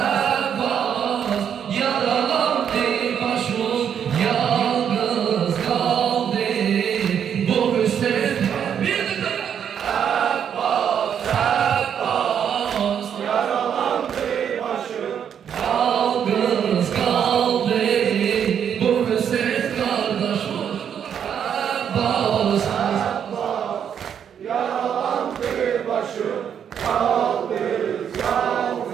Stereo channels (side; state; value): left; quieter; 8.4 dB